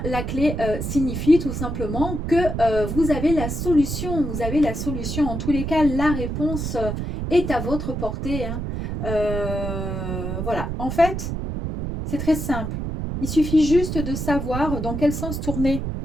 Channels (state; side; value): noise; right; rumble, 4 dB below the sound